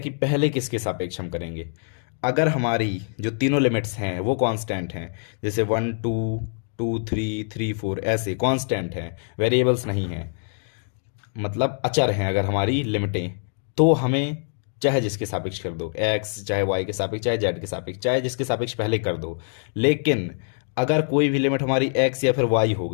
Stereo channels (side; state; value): right; silent; digital silence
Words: पहले किसके सापेक्ष हम करेंगे। अगर हमारी जो तीनों लिमिट्स हैं वो कांस्टेंट हैं, जैसे 1 2 2 3 3 4 ऐसे कांस्टेंट हैं, वेरिएबल्स नहीं हैं, मतलब अचर हैं अगर हमारी लिमिटें, तो हमें चाहे जिसके सापेक्ष कर दो, एक्स चाहे वाई के सापेक्ष चाहे जेड के सापेक्ष, चाहे जिसके सापेक्ष पहले कर दो। लेकिन अगर कोई भी लिमिट हमारी एक्स या फिर वाई हो